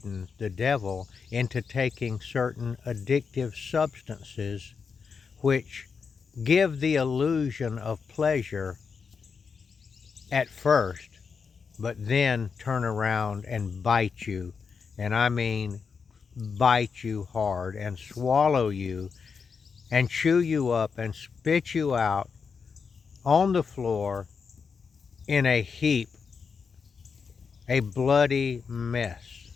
the devil, into taking certain addictive substances which give the illusion of pleasure at first, but then turn around and bite you. And I mean bite you hard and swallow you and chew you up and spit you out on the floor in a heap, a bloody mess.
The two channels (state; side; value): quieter; right; 5.7 dB